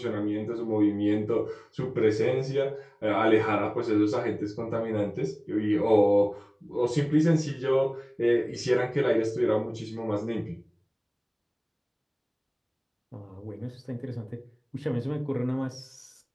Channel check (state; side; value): identical; both; correlation 1.00